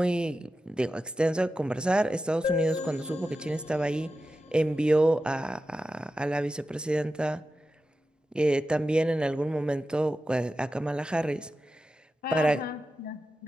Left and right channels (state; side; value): normal; both; correlation 0.92